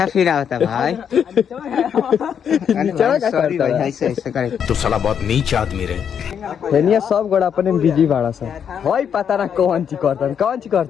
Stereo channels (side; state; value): right; quieter; 8.0 dB